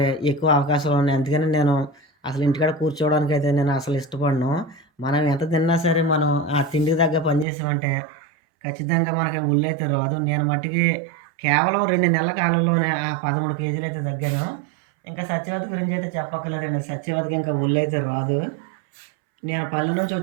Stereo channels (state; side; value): drops out; left; at 7.5 s